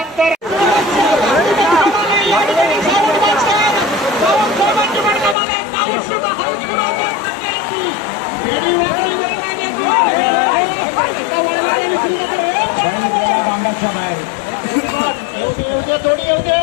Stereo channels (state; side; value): drops out; right; at 5.4 s